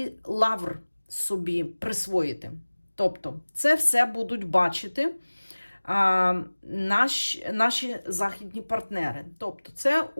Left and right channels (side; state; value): both; inverted; correlation -1.00